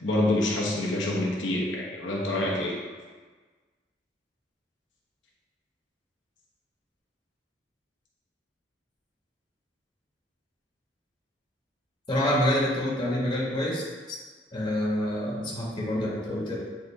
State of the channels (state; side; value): normal; both; correlation 0.64